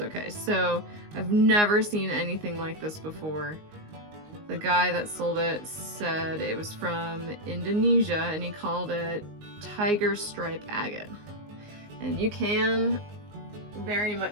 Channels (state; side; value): late; left; 19 ms